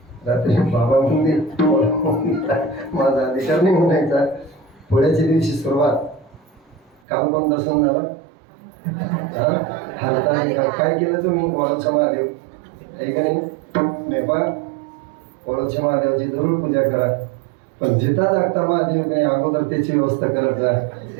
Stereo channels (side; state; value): left; drops out; at 7.0 s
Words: रात्री बाबा म्हणले माझा अधिकार नाही म्हणायचा पोळ्याच्या दिवशी सुरुवात काल पण दर्शन झालं हाताने काय केलं तुम्ही वळूच्या महादेव आहे का नाही मेपा वळूच्या महादेवाची जरूर पूजा करा पण जिता जागता महादेव नाही अगोदर त्याची व्यवस्था करत जा